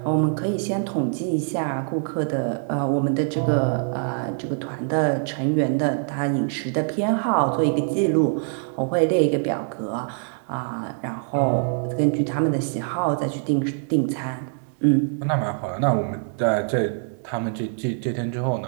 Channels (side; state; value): left; silent; digital silence